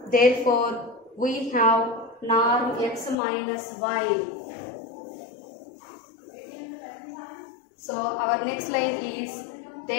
therefore we have norm x minus y. So our next line is,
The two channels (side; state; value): right; drops out; at 3.2 s